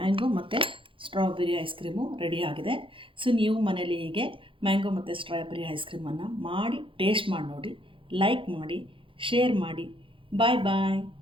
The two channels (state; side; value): late; left; 0.25 ms